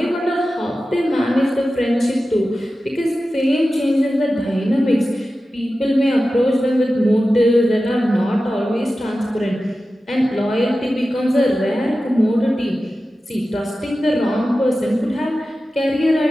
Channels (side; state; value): both; normal; correlation 0.94